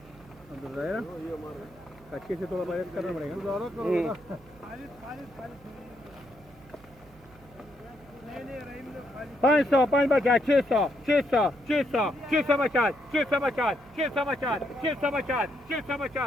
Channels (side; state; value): right; noise; hum, 25 dB below the sound